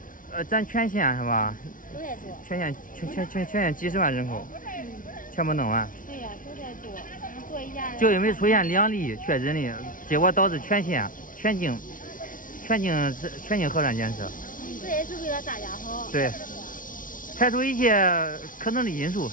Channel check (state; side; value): late; right; 0.39 ms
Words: 咱全县是吧？都在做。全县几十万人口，全部弄完。对呀，都在做，做一下。就因为出现2例确诊的，结果导致全县全境核酸检测。这也是为了大家好。对，排除一切可能的因素，